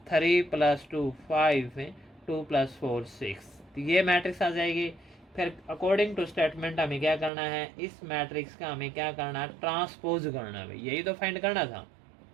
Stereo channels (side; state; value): left; drops out; at 7.3 s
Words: 3 + 2 5, 2 + 4 6। तो ये मैट्रिक्स आ जाएगी। फिर अकॉर्डिंग टू स्टेटमेंट हमें क्या करना है, इस मैट्रिक्स का हमें क्या करना है, ट्रांसपोज करना है भाई, यही तो फाइंड करना था।